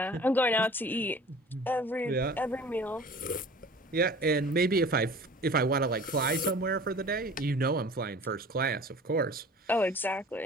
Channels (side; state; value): both; normal; correlation 0.44